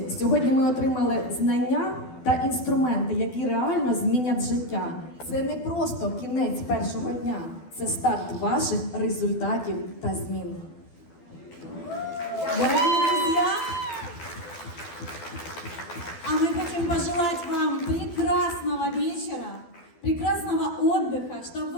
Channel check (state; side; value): late; right; 12 ms